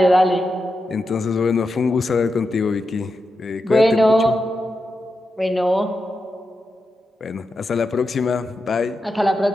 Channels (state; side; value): normal; both; correlation 0.88